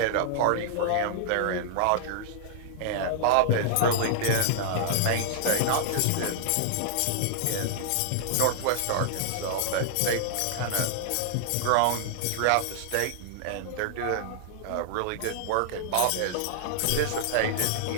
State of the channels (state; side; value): different; both; correlation -0.01